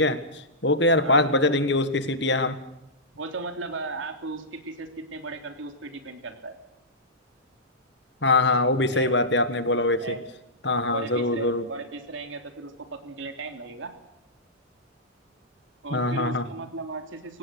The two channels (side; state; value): both; normal; correlation -0.14